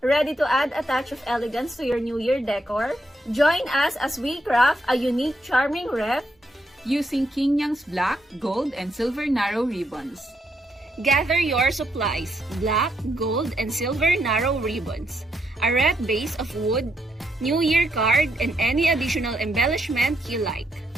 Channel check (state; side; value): normal; both; correlation 0.78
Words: Ready to add a touch of elegance to your New Year decor? Join us as we craft a unique, charming wreath using King Yang's black, gold, and silver narrow ribbons. Gather your supplies, black, gold, and silver narrow ribbons, a wreath base of wood, New Year card, and any additional embellishment you like.